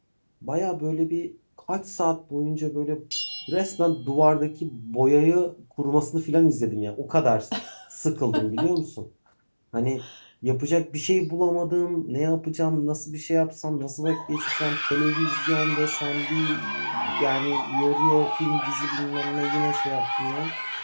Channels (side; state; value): both; inverted; correlation -1.00